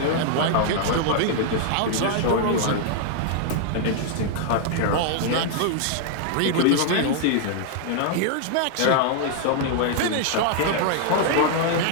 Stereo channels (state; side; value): different; both; correlation 0.00